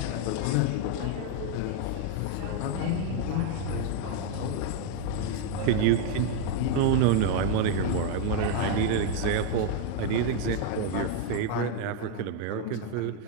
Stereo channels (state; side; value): different; both; correlation 0.00